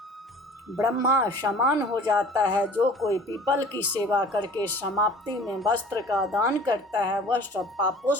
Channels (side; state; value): both; normal; correlation 0.46